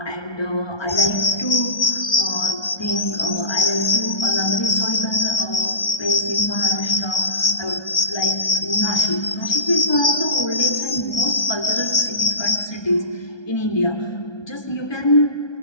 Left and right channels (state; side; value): late; right; 1.3 ms